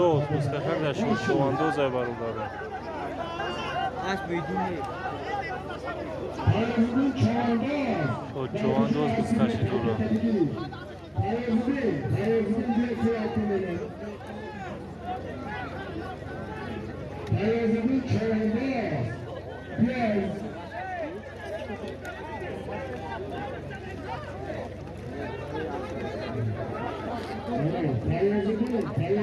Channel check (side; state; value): both; identical; correlation 1.00